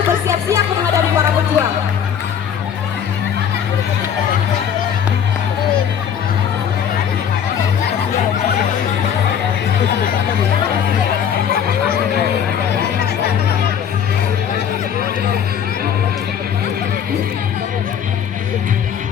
bersiap-siap menghadapi para pejuang.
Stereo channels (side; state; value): right; quieter; 8.4 dB